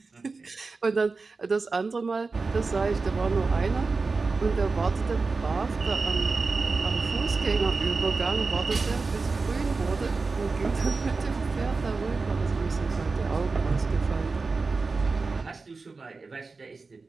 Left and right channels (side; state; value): left; quieter; 4.1 dB